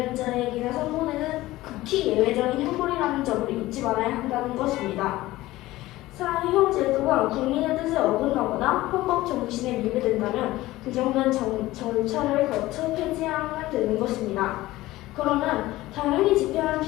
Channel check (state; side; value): quieter; right; 17.4 dB